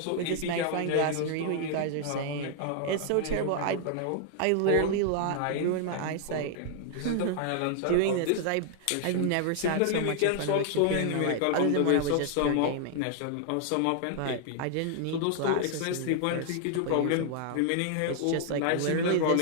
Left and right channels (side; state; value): both; different; correlation 0.00